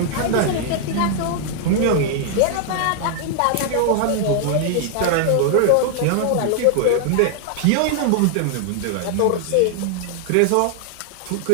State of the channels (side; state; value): both; different; correlation 0.00